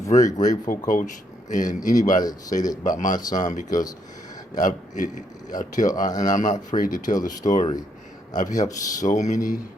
grateful, Coach, and anybody that say that about my son, because and I'm not afraid to tell the story. I've helped so many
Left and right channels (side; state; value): both; normal; correlation 0.74